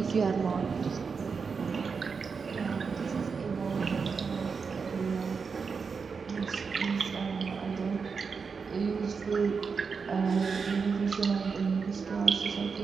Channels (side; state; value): left; quieter; 5.4 dB